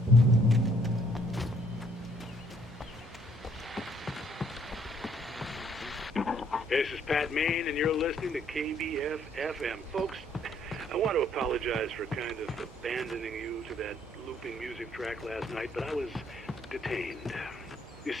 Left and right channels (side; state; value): both; normal; correlation 0.66